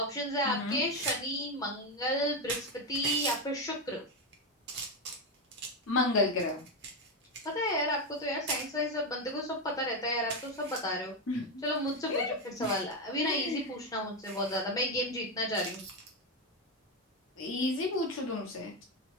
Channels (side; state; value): both; normal; correlation 0.10